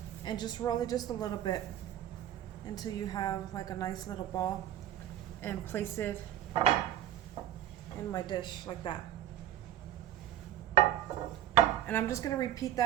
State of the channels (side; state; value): left; quieter; 11.7 dB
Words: and just roll it just a little bit until you have like a nice little ball, and place it in my dish like that. And I'm just gonna repeat